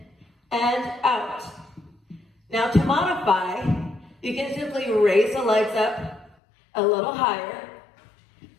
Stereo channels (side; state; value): right; drops out; at 6.4 s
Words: and out. Now to modify, you can simply raise the legs up a little higher.